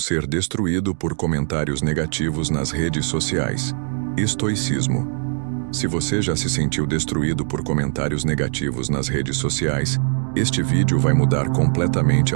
destruído por comentários negativos nas redes sociais? Estoicismo. Se você já se sentiu destruído por comentários negativos nas redes sociais, este vídeo vai mudar completamente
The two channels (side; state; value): left; silent; 65 dB below the other